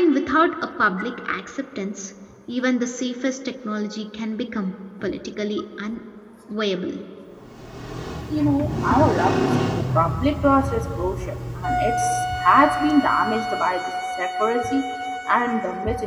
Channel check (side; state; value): both; identical; correlation 1.00